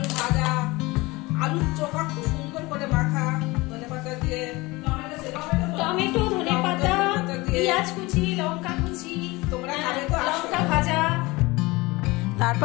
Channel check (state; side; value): quieter; right; 22.4 dB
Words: ভাজা, আলুর চোখা খুব সুন্দর করে মাখা, ধনেপাতা দিয়ে, টমেটো, ধনেপাতা, পেঁয়াজ কুচি, লঙ্কা কুচি, তোমরা খাবে তো লঙ্কা ভাজা।